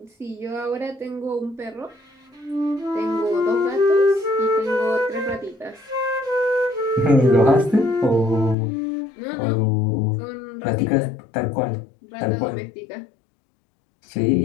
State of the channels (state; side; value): drops out; right; at 8.6 s